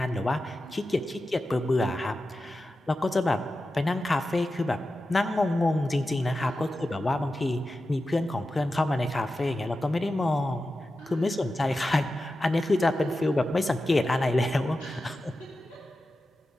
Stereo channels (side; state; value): both; normal; correlation 0.92